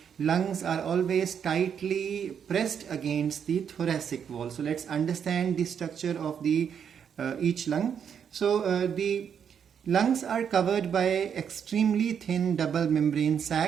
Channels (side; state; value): left; quieter; 7.8 dB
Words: lungs are always tightly pressed against the thoracic wall. So let's understand the structure of the each lung. So the lungs are covered by extremely thin double membrane